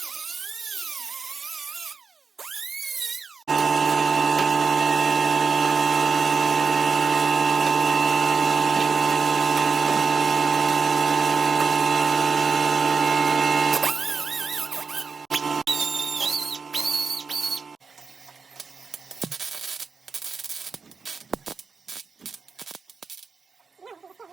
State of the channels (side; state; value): left; quieter; 5.1 dB